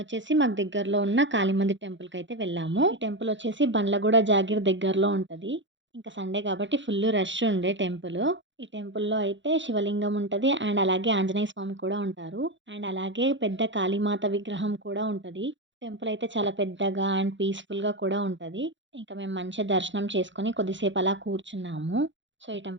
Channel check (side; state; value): left; late; 0.54 ms